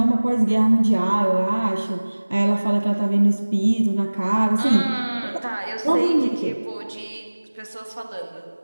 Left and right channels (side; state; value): both; inverted; correlation -1.00